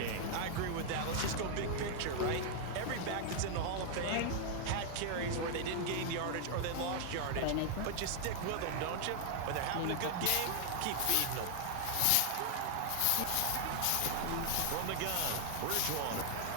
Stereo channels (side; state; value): both; different; correlation 0.00